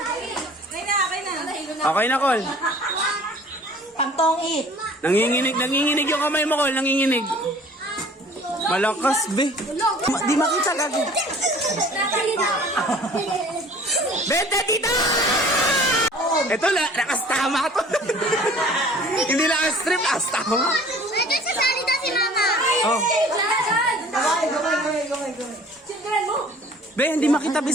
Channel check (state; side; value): normal; both; correlation 0.49